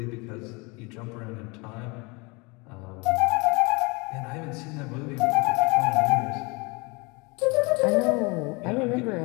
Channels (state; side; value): quieter; right; 27.8 dB